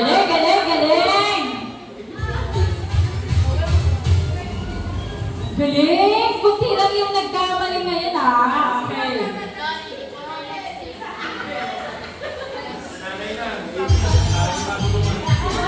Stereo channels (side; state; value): both; identical; correlation 1.00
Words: Galing! Kunti lang yung nagkamali ngayon ha. Okay.